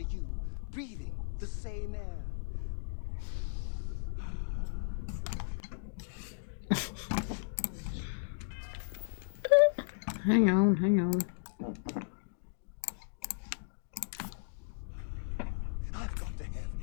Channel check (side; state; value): right; silent; digital silence